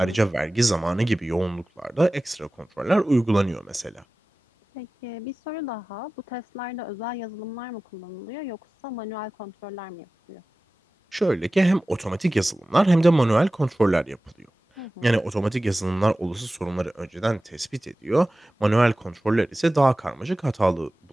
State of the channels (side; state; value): both; normal; correlation 0.97